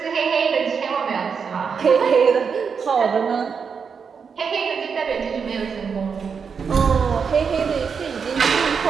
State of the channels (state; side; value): quieter; left; 6.1 dB